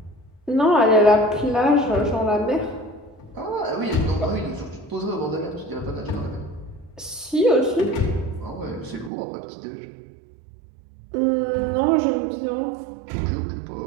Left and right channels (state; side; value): drops out; left; at 9.1 s